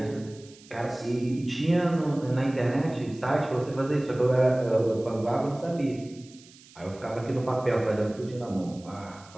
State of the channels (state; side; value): noise; right; hiss, 23 dB below the sound